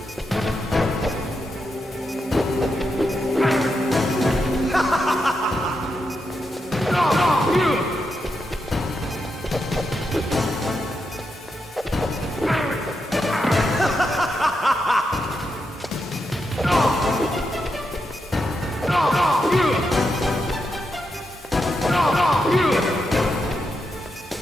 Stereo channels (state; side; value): normal; both; correlation 0.85